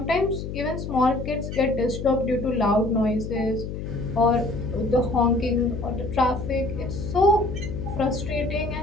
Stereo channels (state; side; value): noise; left; hum, 6 dB below the sound